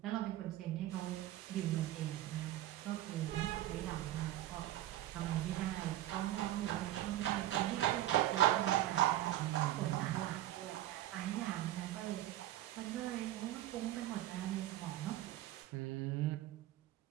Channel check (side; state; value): left; quieter; 14.2 dB